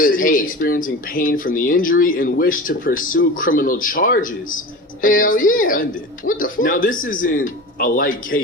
he was experiencing pain from the injury and wished to pursue criminal charges. Hell yeah. What the fuck? Now, this isn't a light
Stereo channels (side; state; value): both; normal; correlation 0.32